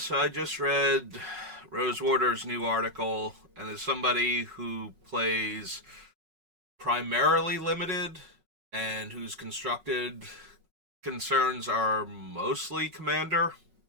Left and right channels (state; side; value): late; left; 5.4 ms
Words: I just read Rosewater's new article, and as somebody who plays primarily limited and whose constructed concerns are mostly commander,